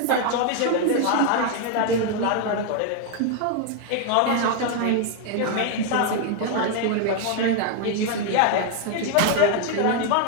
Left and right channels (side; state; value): both; different; correlation 0.00